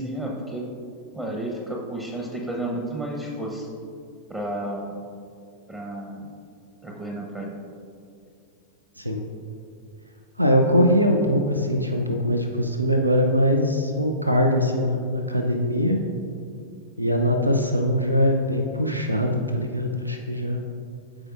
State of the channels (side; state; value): both; inverted; correlation -0.47